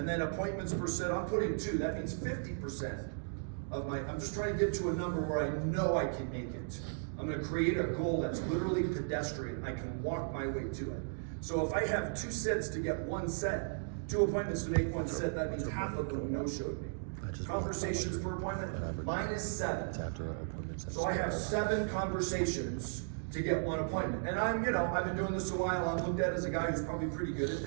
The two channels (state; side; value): silent; left; digital silence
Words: then appointments per sit, I'm putting 2. That means 50% of my, I'm just trying to get to a number where I know I can make it. I'm gonna create a goal that's literally pedestrian. I can walk my way to it. So if I have 2 sets to get 1 set, 2 appointments to make 1 set, that means half of them no-showed me. Conversations per appointment, mine is 7. So I have 7 conversations to get 1 appointment. And I've been doing this a while. I'm looked at as a guy who's probably pretty good at